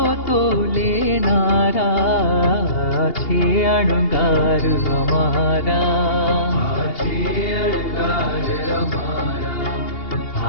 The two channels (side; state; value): right; late; 2.8 ms